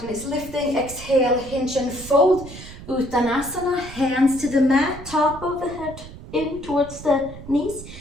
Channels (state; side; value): noise; right; rumble, 14 dB below the sound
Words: is lifting. Exhale, hinge and fold. Uttanasana, hands to the mat, top of the head in towards the knees.